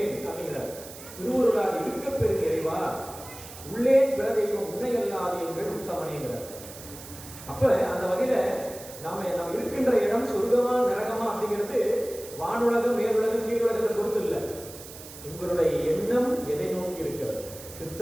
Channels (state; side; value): noise; right; hiss, 15 dB below the sound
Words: அப்படிங்கிறார். திருவுருளால் இருக்க பெரும் இறைவா உள்ளேன் பிற தெய்வம் உன்னை அல்லாது எங்கள் உத்தமனேங்கிறார். அப்ப அந்த வகையில நாம இருக்கின்ற இடம் சொர்க்கமா நரகமா அப்படிங்கிறது வானுலகம் மேலுலகம் கீழுலகத்தை பொறுத்து இல்லை. உங்களுடைய எண்ணம் எதை நோக்கி இருக்கிறது.